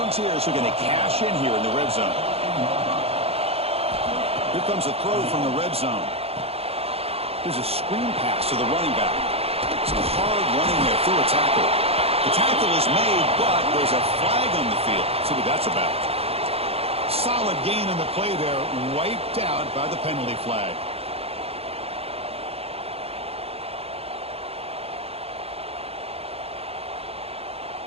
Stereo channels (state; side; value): late; left; 0.29 ms